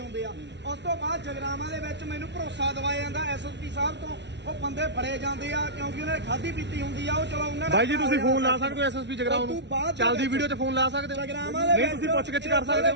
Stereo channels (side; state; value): left; late; 0.51 ms